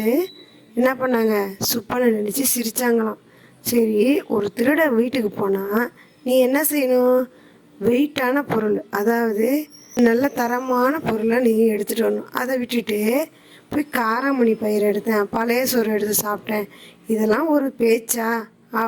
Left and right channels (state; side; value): identical; both; correlation 1.00